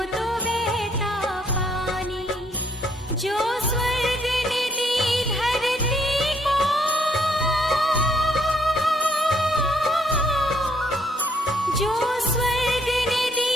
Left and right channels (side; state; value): both; normal; correlation 0.68